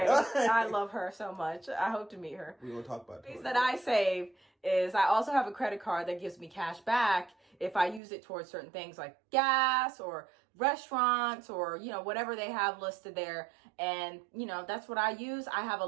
I love her so much. I hope to meet her. We're going to talk about Things that I save is I also have a credit card that gives me cash back if I use it towards certain things like gas or restaurants or, whatever they have listed there. And, that's what I use. I have a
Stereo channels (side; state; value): left; drops out; at 8.0 s